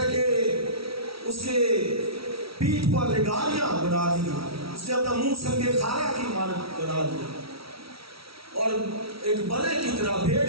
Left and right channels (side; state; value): left; late; 0.75 ms